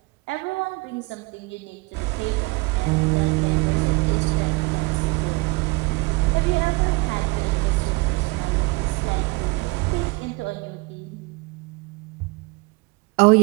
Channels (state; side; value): quieter; left; 25.5 dB